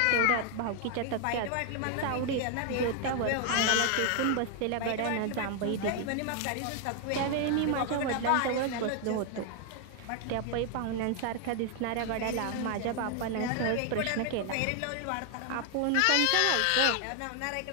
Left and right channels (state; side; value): different; both; correlation 0.00